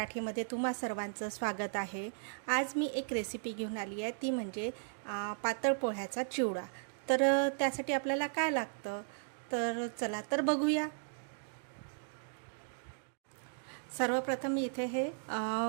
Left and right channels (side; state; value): left; silent; digital silence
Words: तुम्हा सर्वांचं स्वागत आहे। आज मी एक रेसिपी घेऊन आली आहे, ती म्हणजे पातळ पोह्याचा चिवडा। तर त्यासाठी आपल्याला काय लागतं तर चला तर बघूया। सर्वप्रथम मी इथे हे